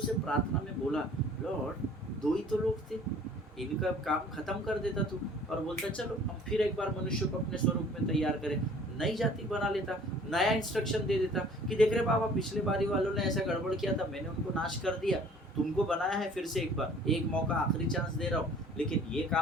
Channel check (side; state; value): both; normal; correlation 0.51